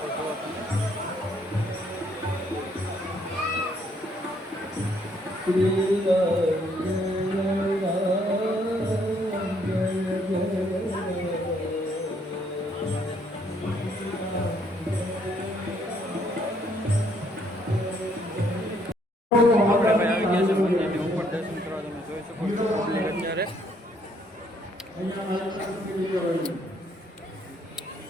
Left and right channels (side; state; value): both; normal; correlation 0.68